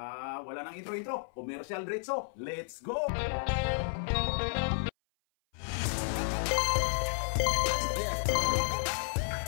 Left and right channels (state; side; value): silent; right; 56 dB below the other